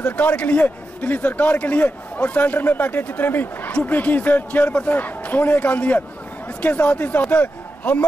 सरकार के लिए, दिल्ली सरकार के लिए, और सेंटर में बैठे जितने भी यूपी की चेयरपर्सन सोनिया गांधी है। इसके साथ ही साथ हम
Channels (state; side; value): normal; both; correlation 0.89